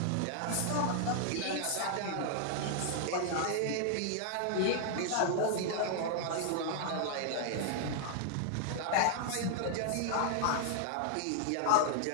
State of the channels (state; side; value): different; both; correlation 0.00